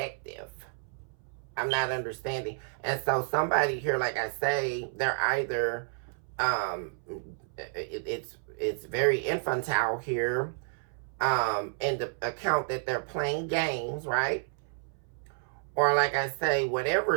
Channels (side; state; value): left; silent; 57 dB below the other